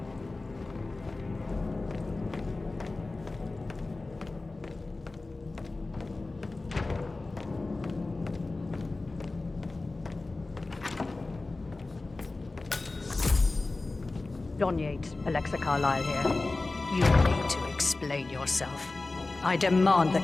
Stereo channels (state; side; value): quieter; right; 3.3 dB